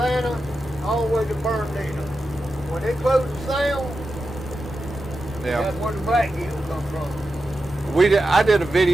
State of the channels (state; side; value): normal; both; correlation 0.90